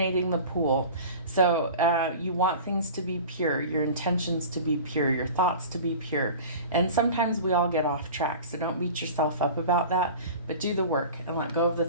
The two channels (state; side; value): inverted; both; correlation -0.37